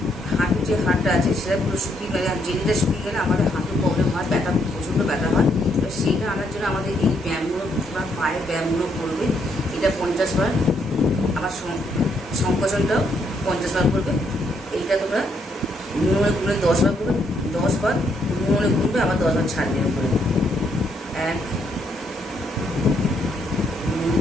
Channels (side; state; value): both; normal; correlation 0.73